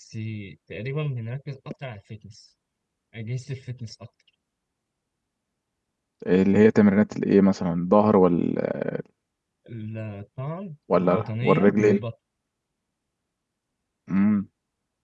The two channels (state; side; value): identical; both; correlation 1.00